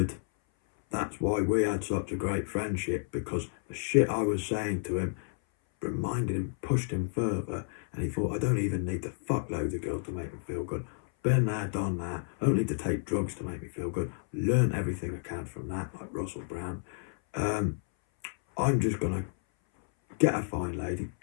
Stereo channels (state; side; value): silent; right; 57 dB below the other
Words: that's why we had such a great friendship, because the shit I was saying to him reminded him, pushed him further, and he thought, I don't even need to fuck loads of girls to make me feel good. Been there, done that. I don't need to take drugs to make me feel good. Learn everything I can from that, like Russell Brand. I'm just going to get a fine lady,